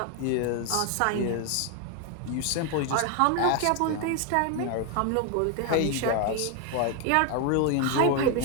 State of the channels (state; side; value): different; both; correlation 0.01